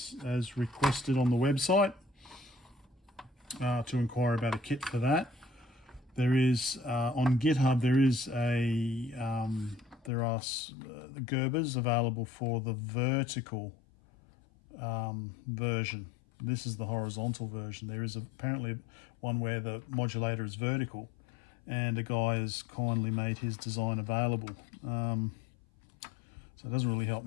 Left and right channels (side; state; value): right; drops out; at 10.1 s